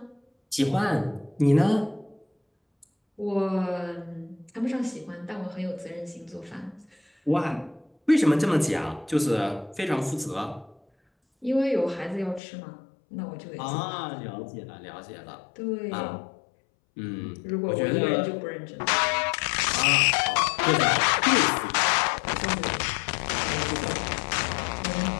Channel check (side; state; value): right; drops out; at 12.4 s